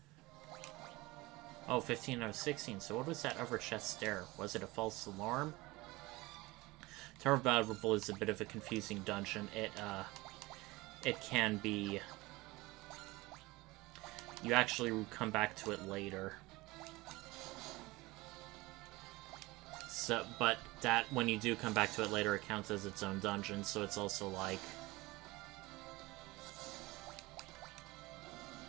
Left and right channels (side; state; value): left; quieter; 21.3 dB